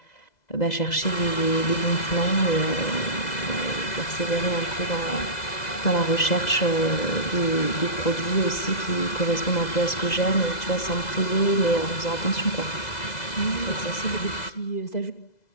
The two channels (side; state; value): right; late; 2.0 ms